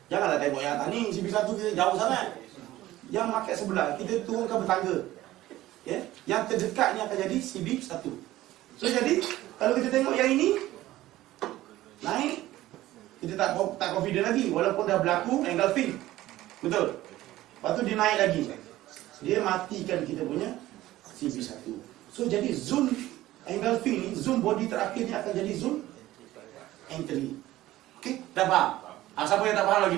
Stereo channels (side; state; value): left; quieter; 15.7 dB